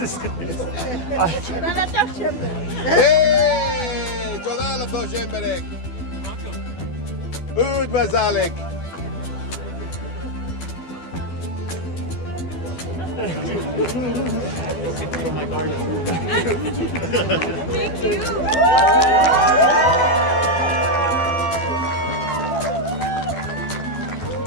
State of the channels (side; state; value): right; late; 12 ms